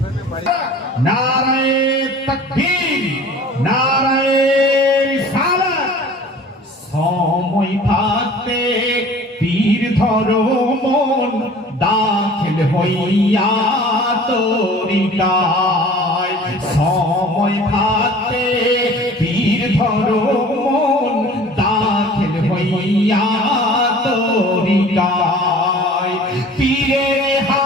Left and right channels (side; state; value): both; normal; correlation 0.46